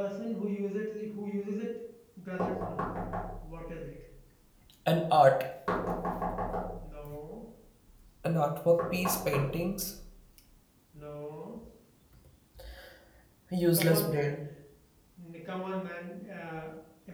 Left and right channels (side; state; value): both; identical; correlation 1.00